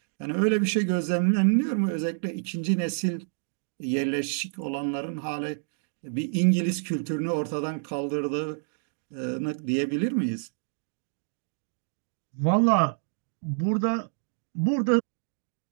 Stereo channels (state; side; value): silent; left; digital silence